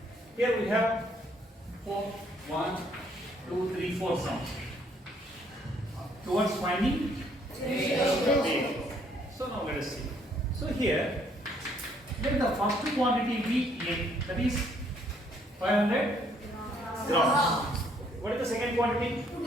Here we have 4, 1, 2, 3, 4 sums. Towards finding ratio. So now let us see. So here, let the first quantity be A, that is 500 grams. What is the second quantity? 2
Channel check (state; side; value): normal; both; correlation 0.66